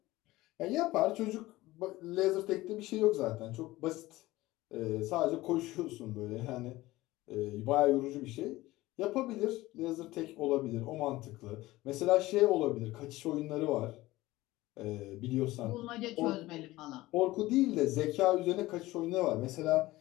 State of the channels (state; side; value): quieter; right; 18.2 dB